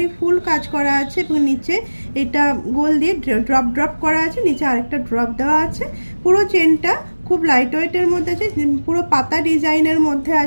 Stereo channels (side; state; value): both; inverted; correlation -1.00